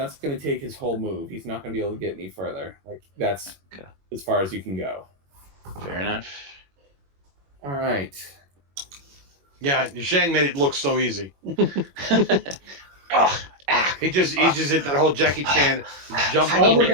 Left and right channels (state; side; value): late; left; 21 ms